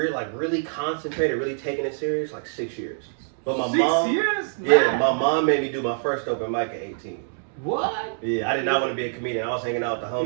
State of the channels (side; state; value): left; silent; digital silence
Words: Really concentrated, really taking it serious, like 6 years. But my 6 years? Yeah, my mom made me do my first open mic at 18. What? Yeah, I did not want to be a comedian. I was hanging out with the